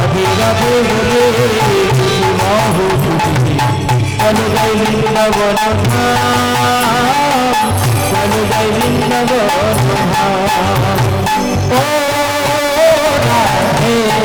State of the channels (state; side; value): identical; both; correlation 1.00